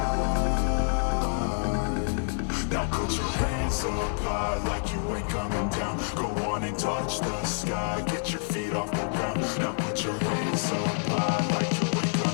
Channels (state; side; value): silent; right; digital silence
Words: Now put your hands up high like you ain't coming down. Go on and touch the sky, get your feet off the ground. Now put your hands up high like you ain't